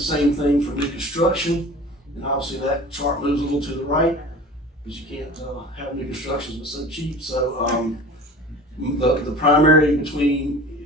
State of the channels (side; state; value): both; normal; correlation 0.39